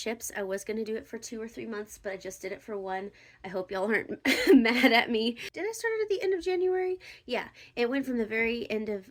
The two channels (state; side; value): identical; both; correlation 1.00